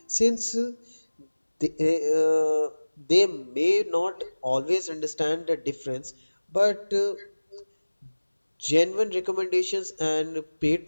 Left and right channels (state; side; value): inverted; both; correlation -1.00